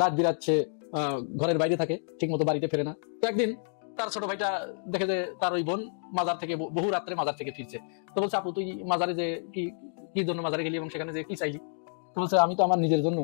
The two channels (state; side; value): silent; right; digital silence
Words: রাত বিরাচ্ছে, ঘরের বাইরে থাকে, ঠিক মতো বাড়িতে ফেরে না। তো একদিন তার ছোট ভাইটা দেখে যে তার ওই বোন মাজার থেকে, বহু রাত্রে মাজার থেকে ফিরছে। তো বলছে, আপু তুই মাজারে যে কি জন্য মাজারে গেলি এবং সেখানে যে কি চাইলি? তো বলছে, আমি তো আমার নিজের জন্য